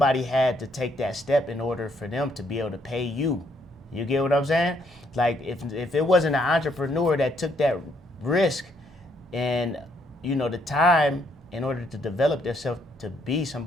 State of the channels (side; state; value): both; normal; correlation 0.71